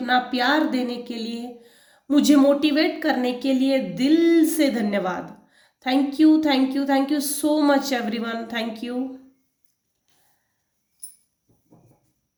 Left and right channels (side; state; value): both; identical; correlation 1.00